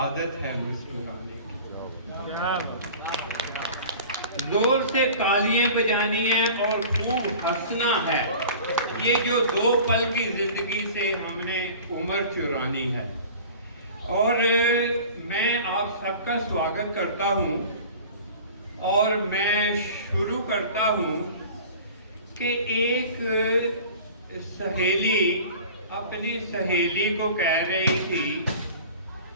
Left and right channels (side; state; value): both; inverted; correlation -0.41